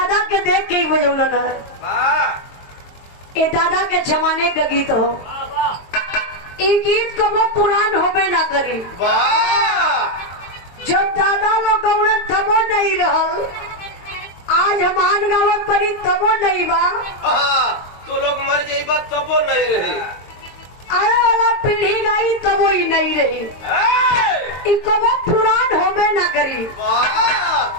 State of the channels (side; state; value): right; late; 23 ms